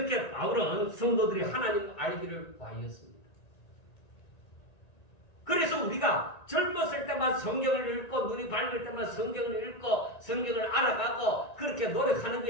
바울은 성도들이 하나님을 알기를 구하였습니다. 그래서 우리가 젊었을 때만 성경을 읽고 눈이 밝을 때만 성경을 읽고 성경을 알아가고 그렇게 노력하는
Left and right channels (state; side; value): late; right; 1.9 ms